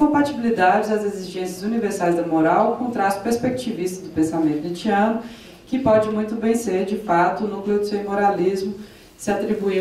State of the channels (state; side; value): identical; both; correlation 1.00